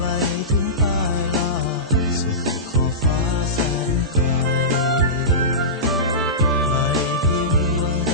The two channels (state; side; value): normal; both; correlation -0.19